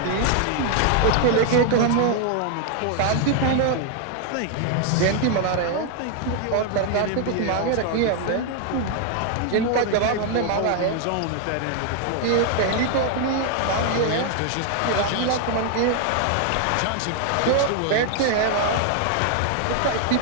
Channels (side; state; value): both; different; correlation 0.00